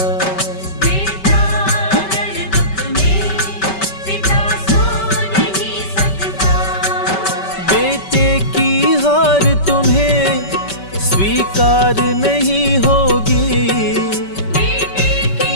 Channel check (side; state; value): right; late; 5.2 ms